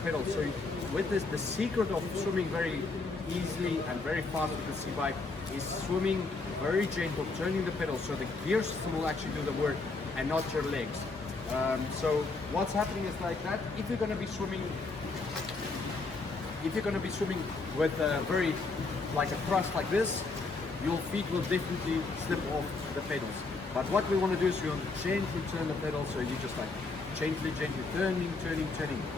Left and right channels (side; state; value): right; quieter; 3.8 dB